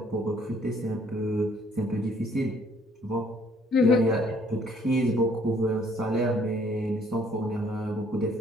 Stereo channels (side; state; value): both; normal; correlation 0.62